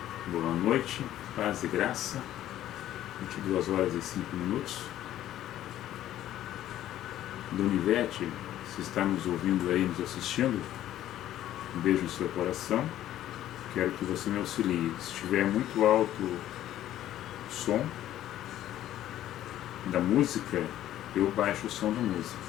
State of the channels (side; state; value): right; quieter; 12.8 dB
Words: Boa noite. Paz e graça. 22 horas e 5 minutos. Donivete, se está nos ouvindo aí, nos assistindo, um beijo no seu coração. Quero que você me auxilie. Se estiver muito alto o som da música, eu baixo o som da música.